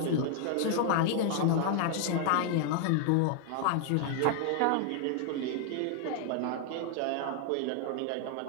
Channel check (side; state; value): both; different; correlation 0.00